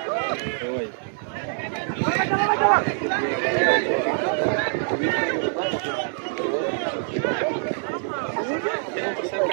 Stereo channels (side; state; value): left; silent; digital silence